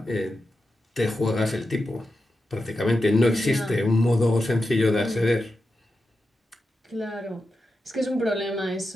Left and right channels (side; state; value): both; normal; correlation 0.89